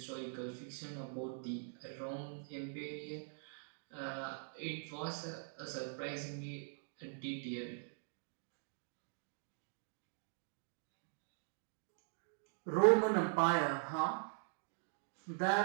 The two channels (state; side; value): silent; left; digital silence